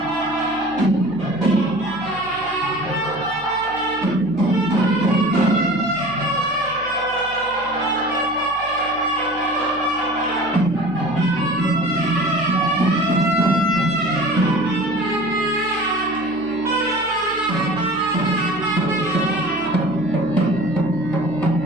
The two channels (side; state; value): left; noise; hum, 21 dB below the sound